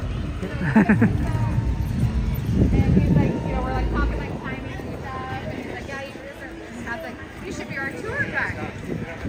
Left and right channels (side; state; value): both; identical; correlation 1.00